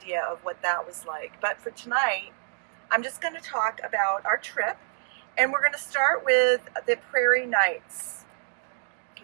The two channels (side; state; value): left; silent; digital silence